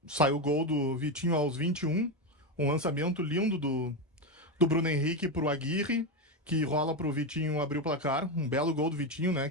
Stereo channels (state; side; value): normal; both; correlation 0.11